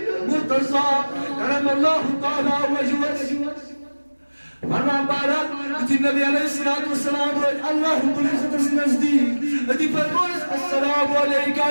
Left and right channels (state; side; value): inverted; both; correlation -1.00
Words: کرم اللہ تعالیٰ وجہس فرمان بہرحال یُتھُے نبی علیہ الصلوۃ والسلام وٲتۍ اللہ رب العزتس نزدیٖک أتی فرمونس السلام علیکہ